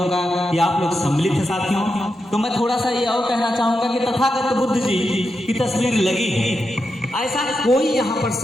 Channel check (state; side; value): normal; both; correlation 0.87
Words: का कि आप लोग सम्मिलित हैं साथियों। तो मैं थोड़ा सा ये और कहना चाहूंगा कि तथागत बुद्ध जी की तस्वीर लगी है, ऐसा कोई यहाँ पर